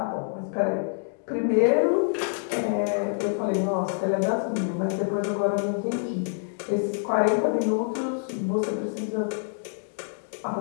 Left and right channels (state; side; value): silent; right; digital silence